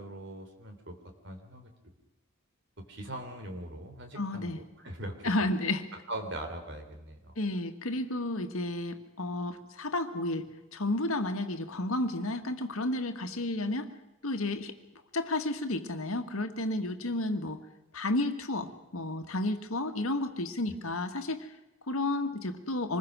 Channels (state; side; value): normal; both; correlation 0.31